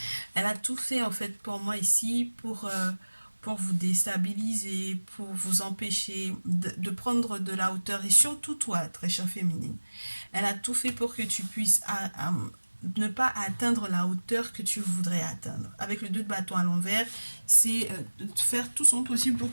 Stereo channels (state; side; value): inverted; both; correlation -1.00